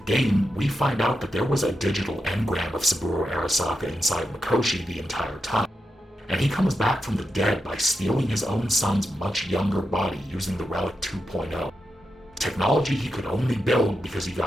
we find out that there was a digital engram of Saburo Arasaka inside Mikoshi the entire time. And he comes back from the dead by stealing his own son's much younger body using the Relic 2.0. Technology he could only build because he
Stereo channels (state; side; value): normal; both; correlation 0.87